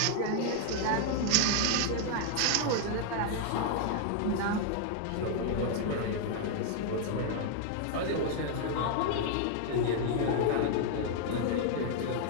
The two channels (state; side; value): different; both; correlation 0.00